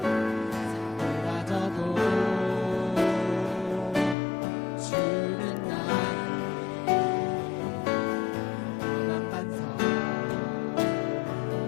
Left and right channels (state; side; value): drops out; right; at 4.2 s